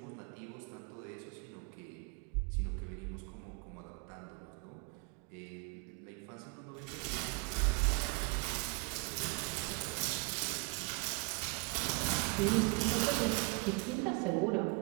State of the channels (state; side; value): quieter; left; 31.5 dB